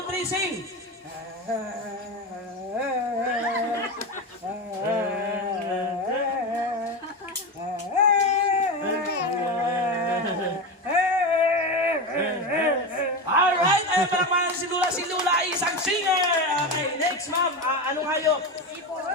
3, sing! Alright, ay palakpakan si Lula. Si Lula ay isang singer. Okay, next ma'am. Anong hayop?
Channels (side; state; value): both; normal; correlation 0.19